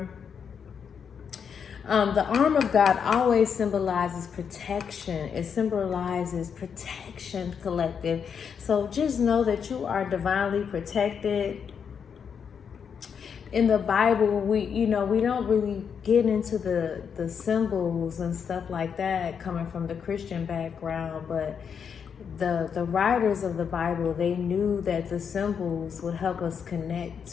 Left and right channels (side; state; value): right; quieter; 7.0 dB